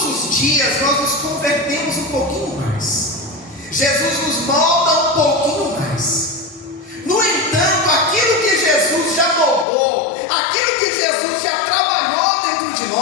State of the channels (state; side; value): drops out; right; at 9.7 s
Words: os dias nós nos convertemos um pouquinho mais. Jesus nos molda um pouquinho mais. No entanto, aquilo que Jesus já moldou, aquilo que Jesus já trabalhou dentro de